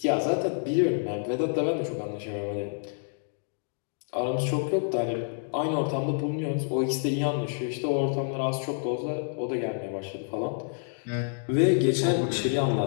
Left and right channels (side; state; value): right; silent; digital silence